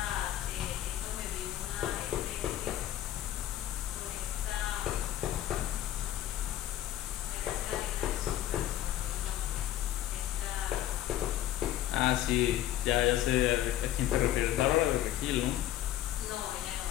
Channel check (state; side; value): quieter; right; 12.9 dB